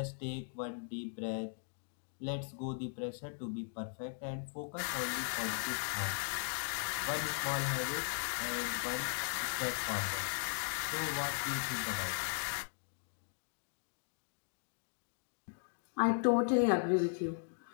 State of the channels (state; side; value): silent; right; digital silence